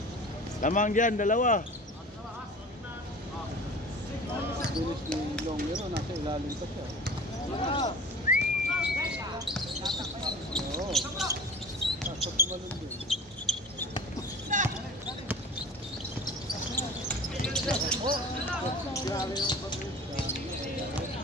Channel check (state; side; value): normal; both; correlation 0.40